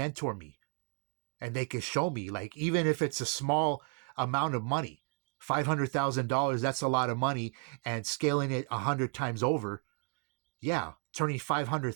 me and they can show me, like, even if it's a small amount of money, $500,000, that's a lot of money, and scaling it 100 times over. Yeah, turning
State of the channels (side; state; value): left; quieter; 39.0 dB